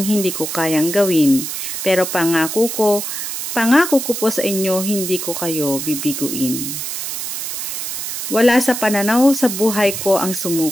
hindi ko kayang gawin. Pero pangako ko po sa inyo, hindi ko kayo bibiguin. Wala sa pananaw sa buhay ko ang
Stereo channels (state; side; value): noise; right; hiss, 5 dB below the sound